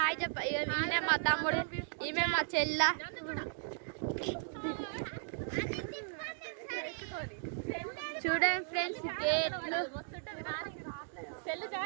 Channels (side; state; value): left; silent; digital silence